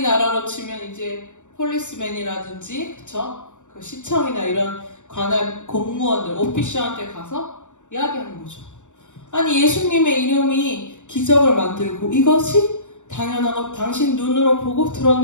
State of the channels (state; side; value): late; right; 0.85 ms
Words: 치면 이제 폴리스맨이라든지 그쵸? 그 시청이나 이런 관할 공무원들, 오피셜한테 가서 이야기하는 거죠. 아니 예수님의 이름이 기적을 만들고 이것이 당연한 것 당신 눈으로 보고